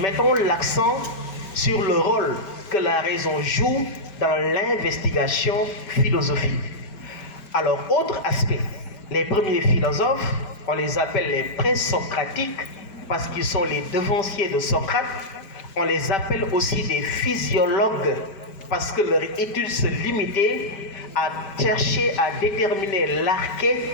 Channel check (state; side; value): late; right; 5.1 ms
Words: l'accent sur le rôle que la raison joue dans l'investigation philosophique. Alors autre aspect, les premiers philosophes, on les appelle les présocratiques parce qu'ils sont les devanciers de Socrate. On les appelle aussi des physiologues parce que leur étude se limitait à chercher à déterminer l'arché,